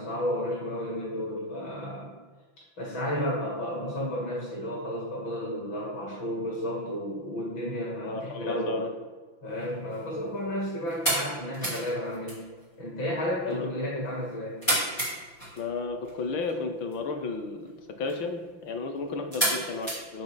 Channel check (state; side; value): late; right; 5.9 ms